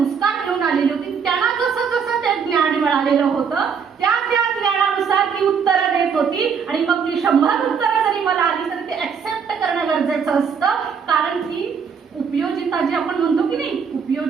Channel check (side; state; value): left; quieter; 6.4 dB